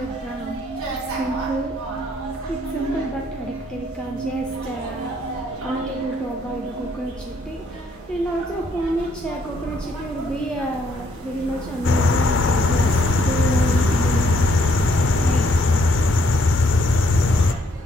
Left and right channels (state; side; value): normal; both; correlation 0.68